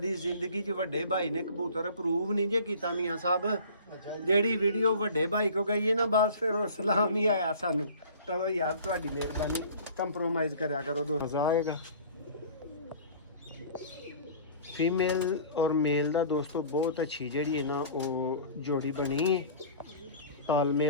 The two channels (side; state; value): both; inverted; correlation -0.44